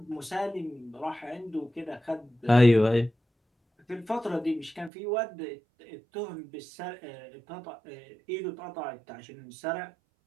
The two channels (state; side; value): drops out; left; at 4.9 s